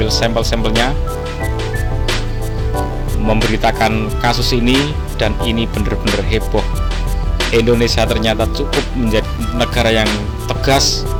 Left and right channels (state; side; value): identical; both; correlation 1.00